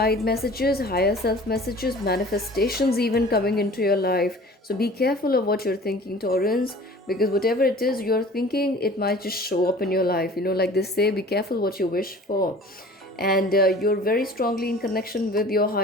messages, higher self messages, manifestations even coming into your life. So be careful of what you're thinking, Taurans, because whatever it is you're thinking, it might just show up in your life. Like they say, be careful what you wish for. And you're very strongly in connection with your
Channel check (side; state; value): both; normal; correlation 0.45